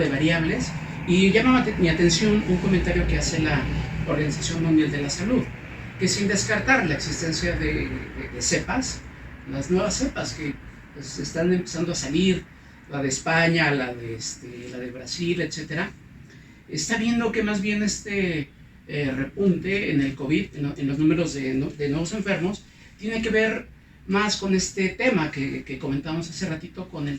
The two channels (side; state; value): both; identical; correlation 1.00